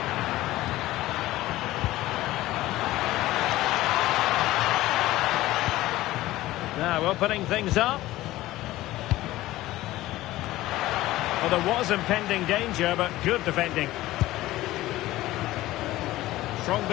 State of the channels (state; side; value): quieter; right; 16.6 dB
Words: Now opening things up. Well, there was impending danger, but good defending. Strong